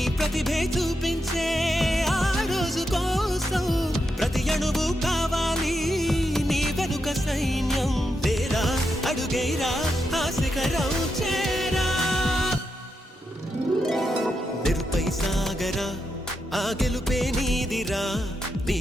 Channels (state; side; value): normal; both; correlation 0.84